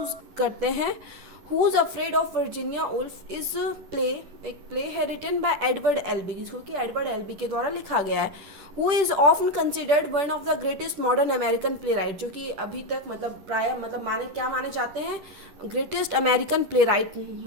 करते हैं। Who's afraid of Virginia Woolf is play, एक प्ले है रिटन बाय एडवर्ड एल्बी, जिसको कि एडवर्ड एल्बी के द्वारा लिखा गया है। Who is often considered one of the greatest modern American playwright, जो कि अभी तक प्राय माने जाते हैं, ग्रेटेस्ट अमेरिकन प्ले राइट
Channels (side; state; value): left; late; 10 ms